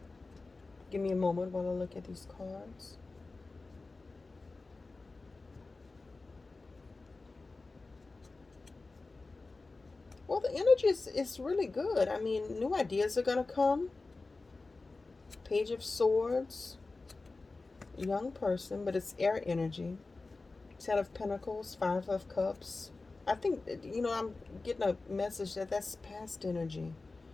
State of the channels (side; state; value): right; quieter; 3.6 dB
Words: Give me a moment while I look at these cards. Well, the energy is really good. I mean, new ideas are going to come. Page of Swords, young person, but it's air energy. Ten of Pentacles, Five of Cups. I think, I'm getting a message that that's past energy.